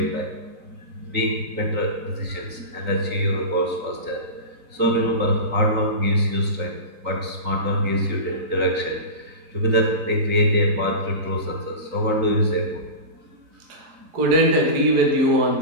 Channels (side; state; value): left; late; 3.9 ms